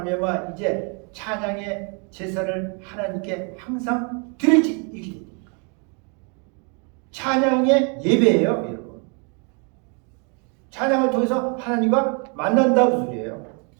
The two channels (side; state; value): left; quieter; 36.1 dB